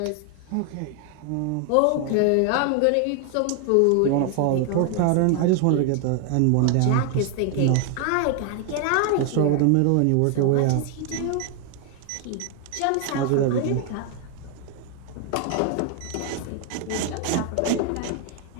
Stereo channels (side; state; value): both; different; correlation 0.00